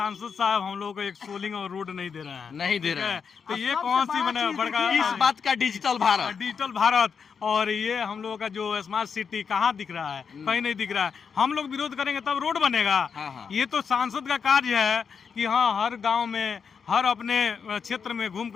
साहब हम लोग को एक सोलिंग और रोड नहीं दे रहे हैं। नहीं दे ठीक रहे है? हैं। तो अब ये सबसे कौन सी बड़ा बना चीज बड़का देखिए, इस बात का डिजिटल भारत। डिजिटल भारत, और ये हम लोगों का जो स्मार्ट सिटी कहाँ दिख रहा है? कहीं नहीं दिख रहा है। हम लोग विरोध करेंगे तब रोड बनेगा। हाँ, हाँ। ये तो सांसद का कार्य है कि हाँ, हर गांव में, हर अपने क्षेत्र में घूम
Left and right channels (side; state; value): right; quieter; 6.3 dB